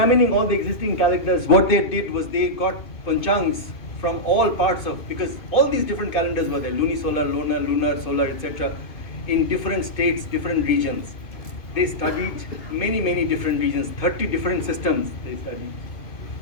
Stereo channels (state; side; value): late; right; 2.7 ms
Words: all the existing calendars, what they did was they got panchangs from all parts of, because all these different calendars were there, lunisolar, lunar, solar, etc., in different states, different regions. They studied many different regions, 30 different systems they studied.